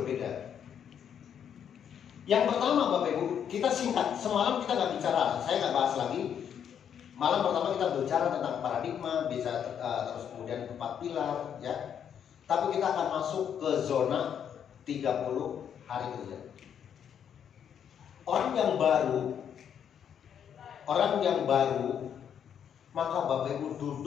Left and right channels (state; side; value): quieter; right; 8.5 dB